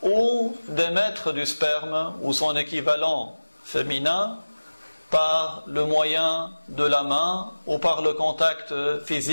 ou d'émettre du sperme ou son équivalent féminin par le moyen de la main ou par le contact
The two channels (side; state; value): both; inverted; correlation -1.00